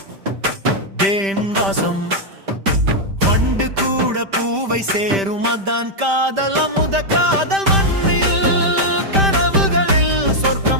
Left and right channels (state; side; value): late; left; 5.1 ms